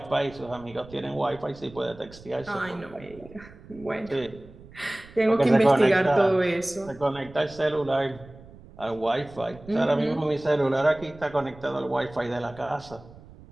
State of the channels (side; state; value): right; noise; rumble, 20 dB below the sound